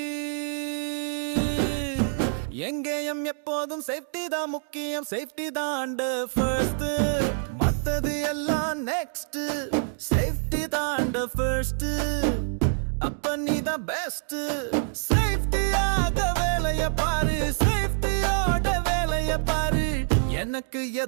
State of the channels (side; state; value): left; silent; digital silence